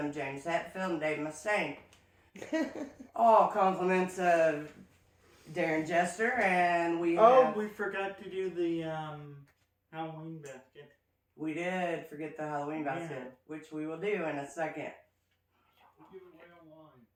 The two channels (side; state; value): both; identical; correlation 1.00